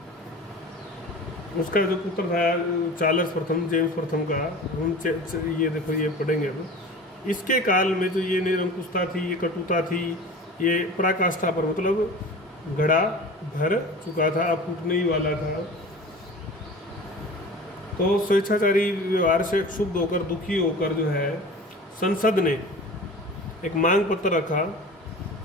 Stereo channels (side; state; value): both; normal; correlation 0.38